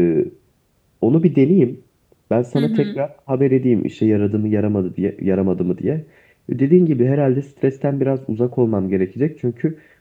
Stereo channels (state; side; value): identical; both; correlation 1.00